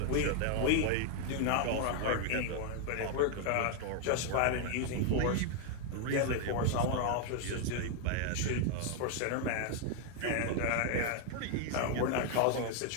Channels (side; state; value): both; different; correlation 0.00